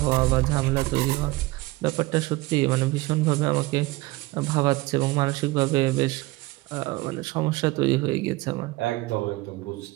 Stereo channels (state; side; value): quieter; left; 20.7 dB